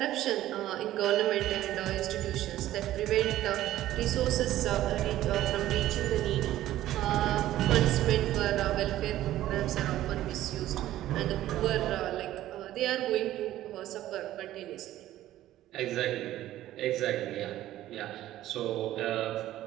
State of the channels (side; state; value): left; quieter; 14.0 dB